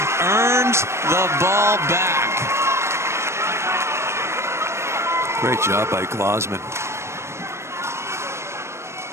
earns the ball back. Great job by Glozman.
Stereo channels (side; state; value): left; late; 0.13 ms